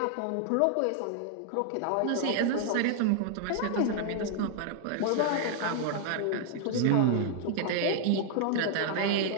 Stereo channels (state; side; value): different; both; correlation -0.01